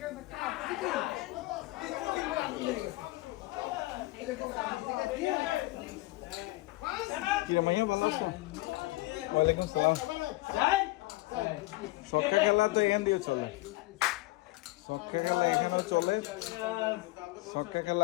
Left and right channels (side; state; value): right; quieter; 20.4 dB